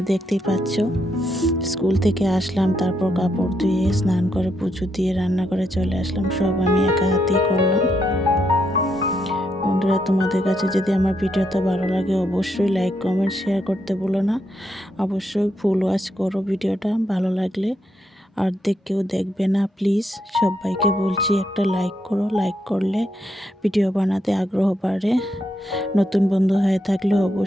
দেখতেই পাচ্ছ। স্কুল থেকে আসলাম, তারপর কাপড় ধুয়ে স্নান করে পুজো দিয়ে রান্না করে চলে আসলাম। সব আমি একা হাতেই করলাম। বন্ধুরা, তোমাদের কাছে যদি আমার ভিডিওটা ভালো লাগে অবশ্যই লাইক, কমেন্ট, শেয়ার করতে ভুলো না। অবশ্যই ফুল ওয়াচ করো ভিডিওটা ভালো লাগলে, আর কেউ দেখবে না প্লিজ। সবাইকে বলছি একটা লাইক করো, লাইক করলে ভিডিও বানাতে আগ্রহ বাড়ে। নতুন বন্ধু হয়ে থাকলে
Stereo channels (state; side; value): normal; both; correlation 0.79